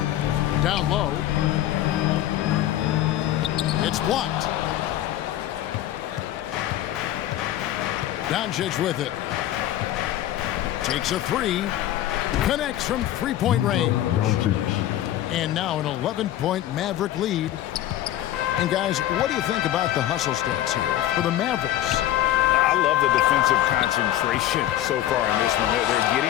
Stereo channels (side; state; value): right; quieter; 13.1 dB